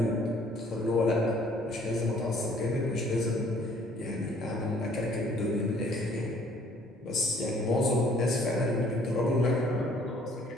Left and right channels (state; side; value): normal; both; correlation 0.59